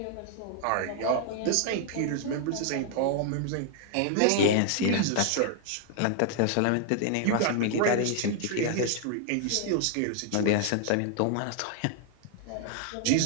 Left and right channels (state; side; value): different; both; correlation 0.00